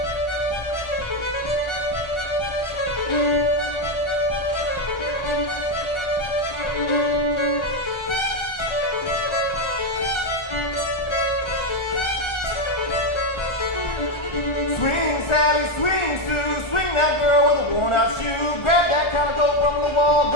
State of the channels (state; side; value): late; right; 1.4 ms